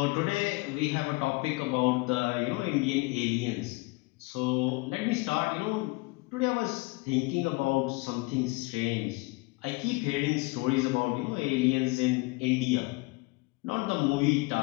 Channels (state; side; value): quieter; right; 24.8 dB